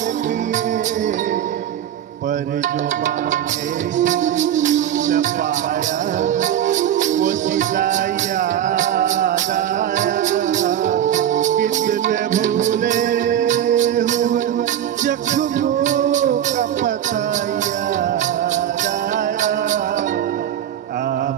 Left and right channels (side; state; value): left; quieter; 10.6 dB